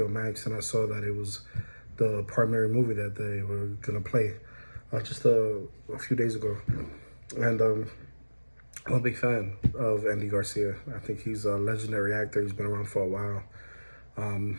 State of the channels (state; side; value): inverted; both; correlation -1.00